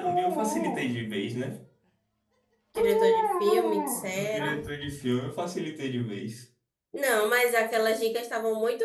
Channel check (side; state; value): both; identical; correlation 1.00